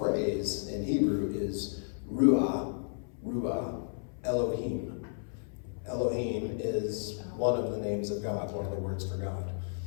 in Hebrew is ruah, Elohim. Elohim is one of the names of God, one of the words for God.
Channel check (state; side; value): silent; right; 56 dB below the other